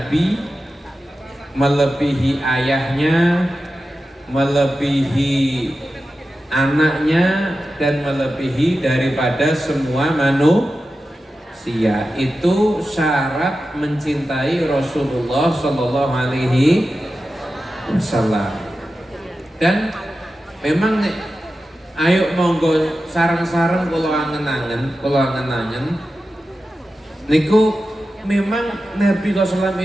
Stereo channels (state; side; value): normal; both; correlation 0.92